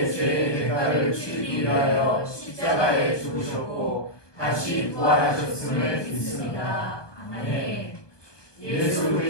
죄의 대가를 치르기 위하여 십자가에 죽으셨고 다시 부활하셨음을 믿습니다. 아멘. 예수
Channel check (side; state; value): right; late; 1.2 ms